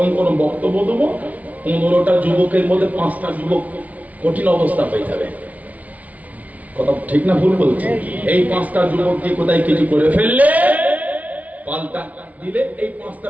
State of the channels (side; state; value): left; late; 0.070 ms